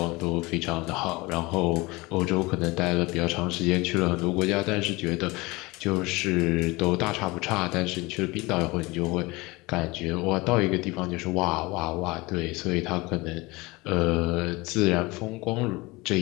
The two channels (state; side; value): quieter; right; 23.1 dB